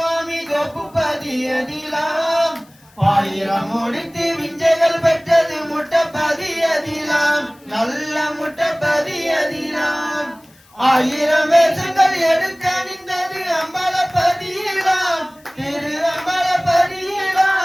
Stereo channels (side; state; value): left; noise; hiss, 30 dB below the sound